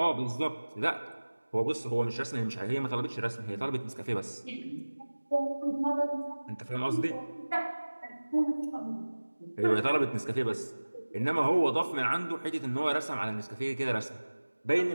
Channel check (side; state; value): both; inverted; correlation -1.00